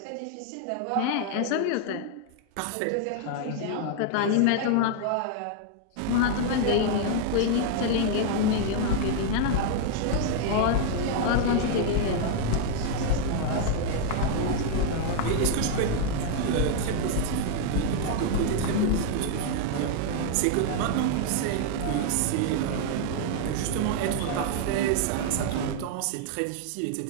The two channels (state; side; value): different; both; correlation 0.00